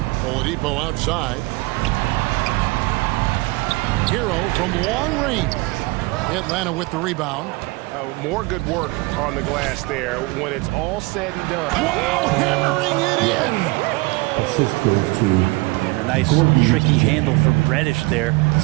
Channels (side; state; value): left; quieter; 24.2 dB